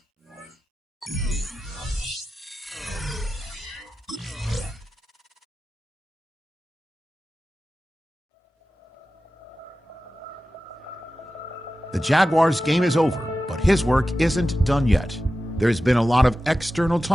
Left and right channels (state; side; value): normal; both; correlation 0.94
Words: The Jaguars' game is over, but his work isn't done yet. There's been a lot of external